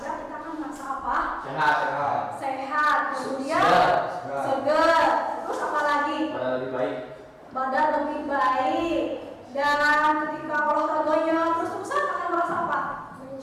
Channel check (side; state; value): both; identical; correlation 1.00